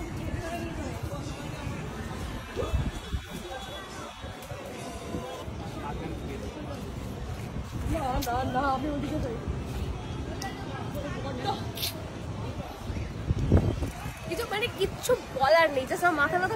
না আমি ওদিকে যাই কিছু মানে কিচ্ছু বলার নেই, জাস্ট আমার মাথা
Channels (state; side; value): identical; both; correlation 1.00